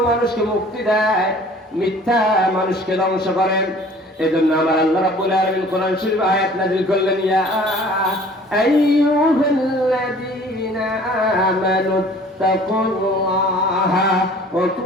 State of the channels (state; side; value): normal; both; correlation 0.50